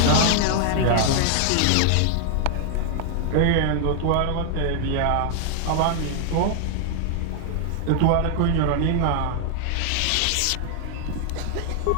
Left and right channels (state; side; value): different; both; correlation 0.00